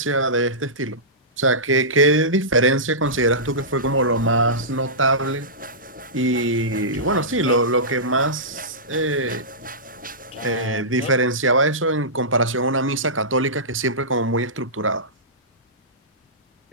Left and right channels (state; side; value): normal; both; correlation -0.18